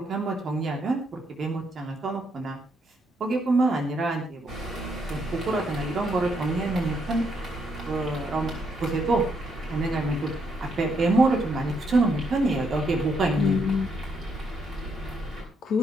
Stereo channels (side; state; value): both; normal; correlation 0.75